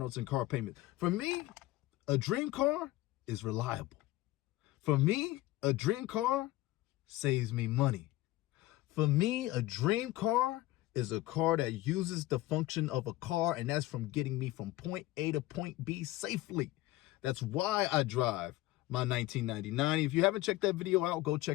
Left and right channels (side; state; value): right; quieter; 17.4 dB